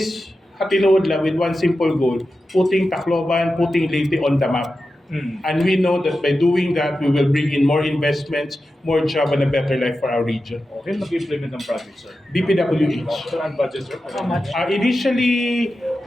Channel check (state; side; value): normal; both; correlation 0.92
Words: hatinuod lang with one simple goal, putting Tacloban, putting Leyte on the map. And we know that by doing that, we will bring in more investments, more job, and a better life for our region. Okay, mag-implement ng project, sir. DPWH. So, ang budget, sir? How much? Initially,